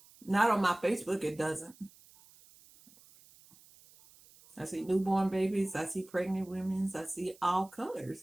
Not on my Facebook, it doesn't. I see newborn babies, I see pregnant women, I see all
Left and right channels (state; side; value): noise; right; hiss, 25 dB below the sound